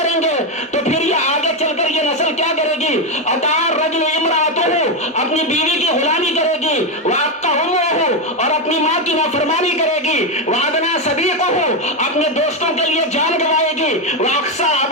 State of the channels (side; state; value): both; normal; correlation 0.08